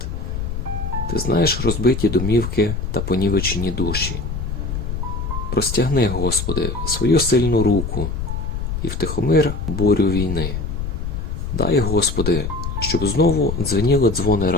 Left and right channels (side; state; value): left; noise; rumble, 4 dB below the sound